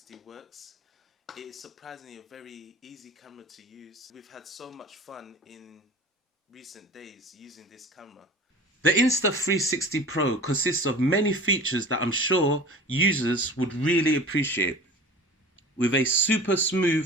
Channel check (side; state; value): both; normal; correlation 0.39